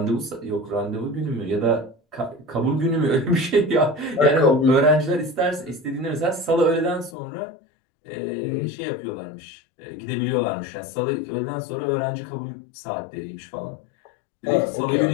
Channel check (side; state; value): right; drops out; at 7.2 s